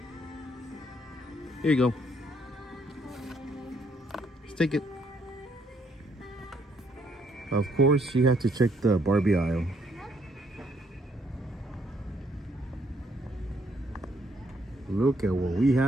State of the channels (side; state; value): both; normal; correlation 0.70